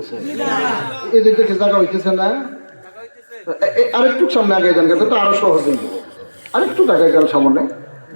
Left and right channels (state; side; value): inverted; both; correlation -1.00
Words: এই দিকে জায়গা হইতেছে না? আরেকটু সামনে আগে যান, কিন্তু আরো সহজ হয়ে যাবে। আরেকটু আগে যান সামনে।